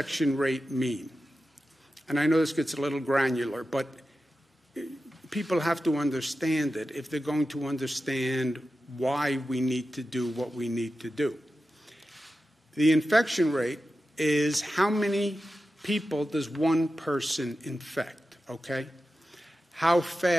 rate mean? And I know this gets a little granular, but people have to understand it if they're going to understand why we need to do what we need to do. The infection rate is how many people does one person infect, okay? How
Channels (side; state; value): both; normal; correlation 0.92